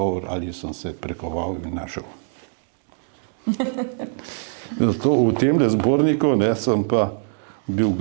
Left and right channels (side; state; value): left; silent; digital silence